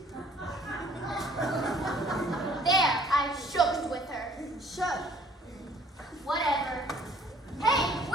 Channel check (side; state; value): both; normal; correlation 0.57